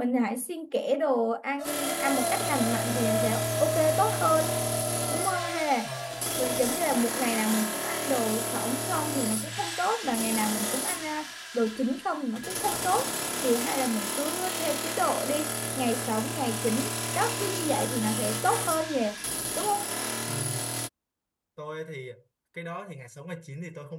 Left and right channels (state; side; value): identical; both; correlation 1.00